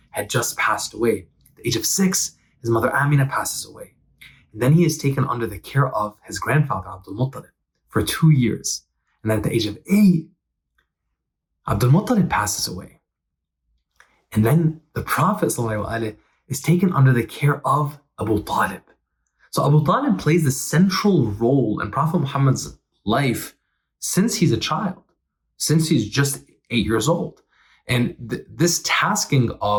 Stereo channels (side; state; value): both; identical; correlation 1.00